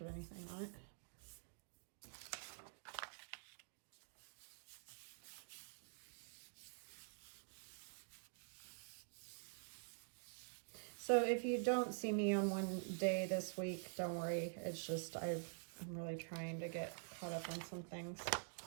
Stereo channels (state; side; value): silent; left; digital silence